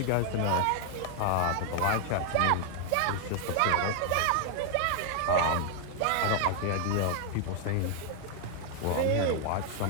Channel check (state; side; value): different; both; correlation 0.00